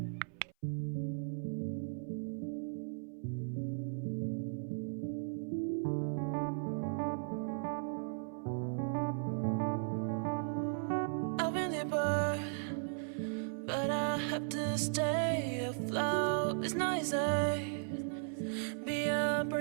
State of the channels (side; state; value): left; silent; 53 dB below the other